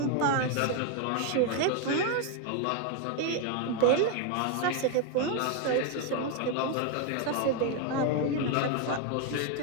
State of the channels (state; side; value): different; both; correlation 0.01